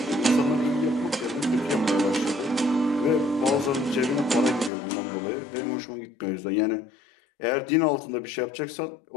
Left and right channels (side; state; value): right; drops out; at 4.7 s